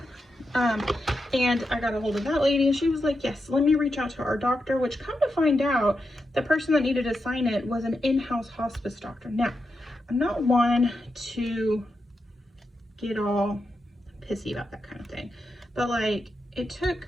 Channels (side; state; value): both; normal; correlation 0.87